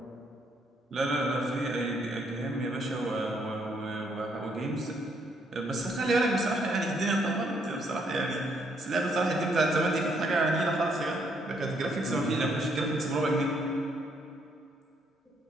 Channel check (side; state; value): both; normal; correlation 0.71